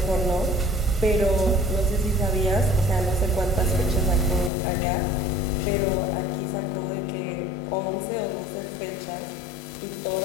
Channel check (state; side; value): drops out; right; at 4.5 s